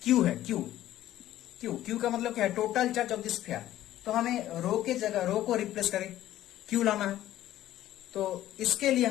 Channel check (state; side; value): quieter; right; 13.6 dB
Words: क्यू है, क्यू क्यू क्यू का मतलब क्या है total charge of this sphere. तो हमें रो के जगह रो को रिप्लेस करें क्यू लाना है, तो इसके लिए